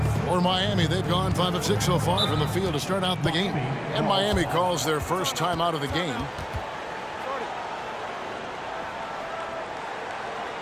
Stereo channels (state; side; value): identical; both; correlation 1.00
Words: For Miami, they've gone 5 of 6 so far from the field to start out the game. And Miami calls their first time out of the game.